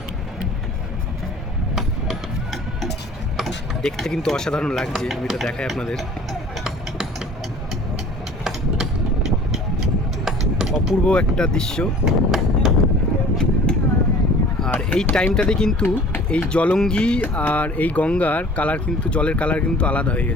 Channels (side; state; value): both; normal; correlation 0.47